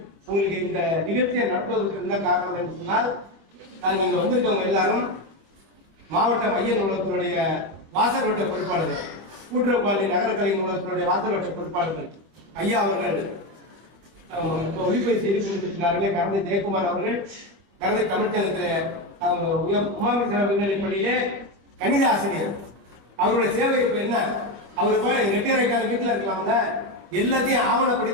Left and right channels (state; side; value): late; left; 25 ms